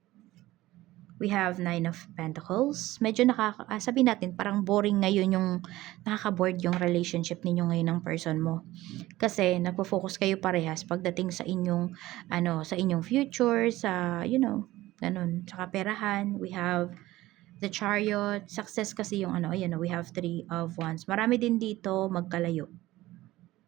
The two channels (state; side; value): quieter; left; 17.0 dB